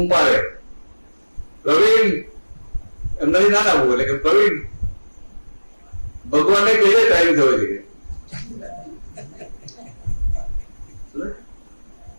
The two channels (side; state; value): both; inverted; correlation -1.00